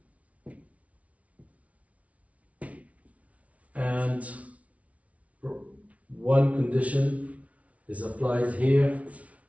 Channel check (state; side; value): late; left; 0.066 ms